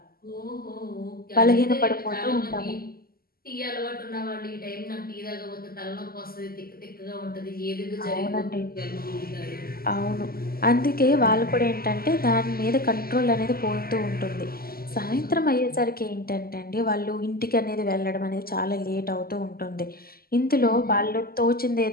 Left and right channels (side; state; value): right; late; 0.43 ms